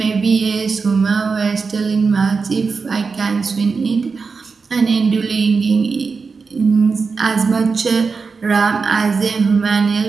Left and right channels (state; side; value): quieter; left; 4.9 dB